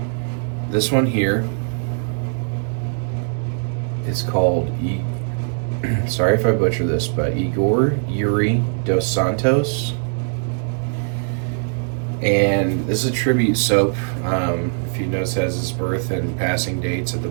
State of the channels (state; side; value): silent; left; digital silence